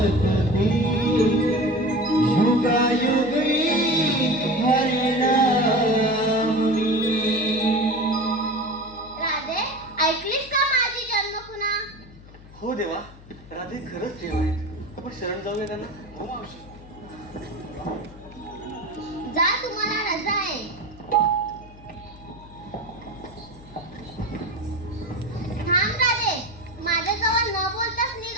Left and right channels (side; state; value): left; noise; hum, 20 dB below the sound